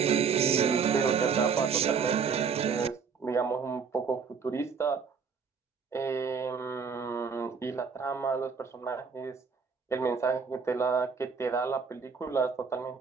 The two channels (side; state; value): left; quieter; 5.8 dB